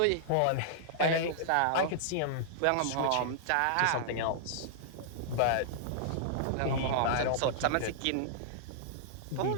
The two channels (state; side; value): different; both; correlation -0.01